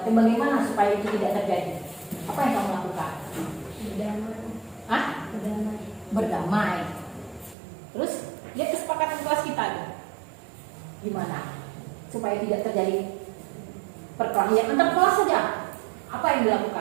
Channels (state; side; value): drops out; left; at 7.6 s